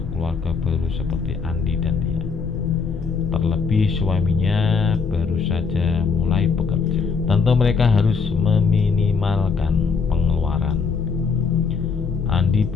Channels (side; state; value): right; quieter; 5.3 dB